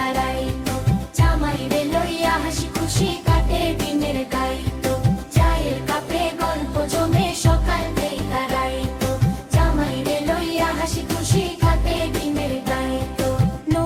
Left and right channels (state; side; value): identical; both; correlation 1.00